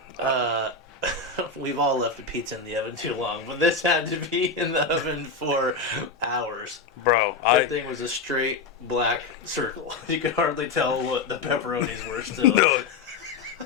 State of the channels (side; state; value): right; quieter; 4.2 dB